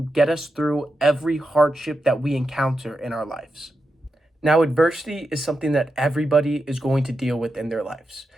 get us through every hardship that we encounter in our lives. Now, adversity is something that everybody is going to deal with in their lives,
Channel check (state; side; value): normal; both; correlation 0.88